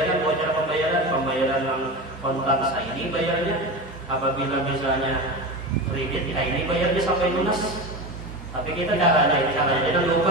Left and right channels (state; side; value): normal; both; correlation 0.24